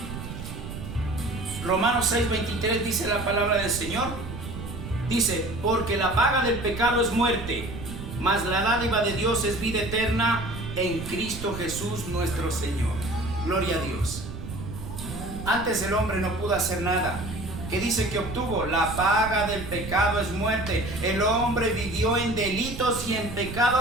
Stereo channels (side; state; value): right; noise; rumble, 9 dB below the sound